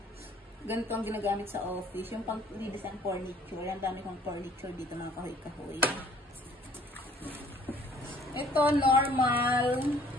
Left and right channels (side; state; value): both; normal; correlation 0.57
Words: ganito ang ginagamit sa office. Yung pang redesign furniture. Yan, dami kong furniture dito, mga kahoy-kahoy. Ito, Normal